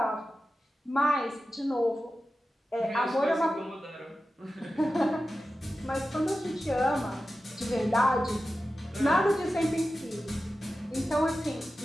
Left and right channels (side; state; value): both; normal; correlation 0.93